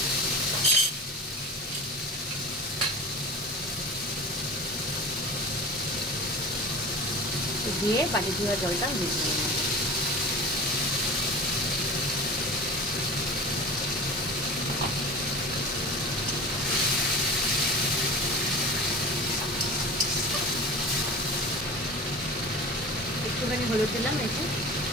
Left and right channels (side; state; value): both; normal; correlation 0.34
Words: দিয়ে বাটি ধোয়া জলটা মিশিয়ে নেব। একটুখানি হলুদ দিলাম এতে,